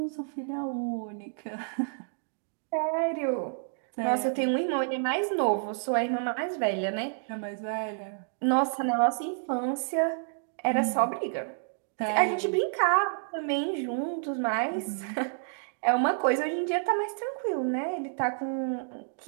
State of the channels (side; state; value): left; silent; digital silence